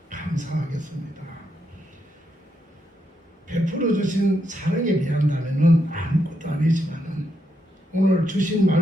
감사하겠습니다. 베풀어 주신 사랑에 비한다면은 아무것도 아니지만은 오늘 주신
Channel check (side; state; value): both; normal; correlation 0.80